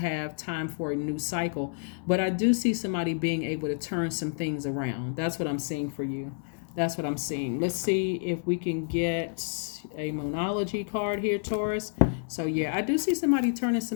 time for a new cycle. But I do see somebody being able to turn some things around. That's what I'm seeing for you. That's what I'm seeing. Let's see if we can get a Moonology card here, Taurus. So, yeah, I do see somebody turning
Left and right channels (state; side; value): silent; right; digital silence